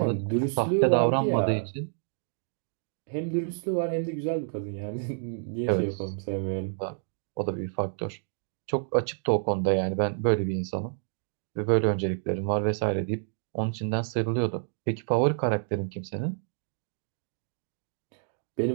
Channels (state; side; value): silent; left; digital silence